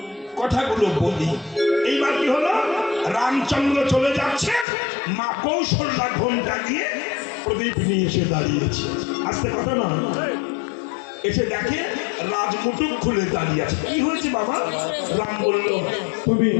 কথাগুলো বলি। এইবার কি হলো, রামচন্দ্র চলে যাচ্ছে, মা কৌশল্যা ঘোমটা দিয়ে প্রদীপ নিয়ে এসে দাঁড়িয়েছে। আস্তে কথা না, এসে দেখে রাজমুটুক খুলে দাঁড়িয়ে আছে। কি হয়েছে বাবা? রাম বলল, তুমি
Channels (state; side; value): drops out; right; at 4.7 s